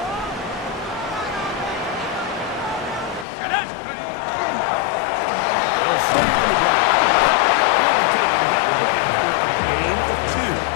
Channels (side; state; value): right; drops out; at 3.2 s